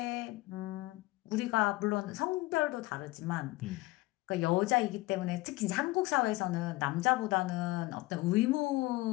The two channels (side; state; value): right; quieter; 20.0 dB